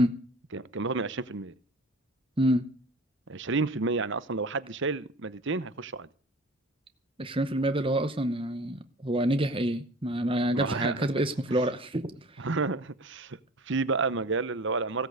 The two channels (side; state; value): both; normal; correlation 0.41